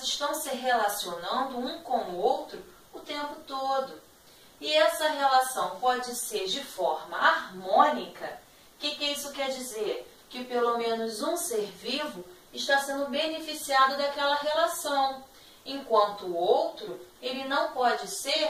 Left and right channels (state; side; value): identical; both; correlation 1.00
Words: estão se relacionando um com o outro o tempo todo. E essa relação pode ser de forma harmônica. O que isso quer dizer? Que pelo menos um ser vivo está sendo beneficiado daquela relação, enquanto o outro, ele não pode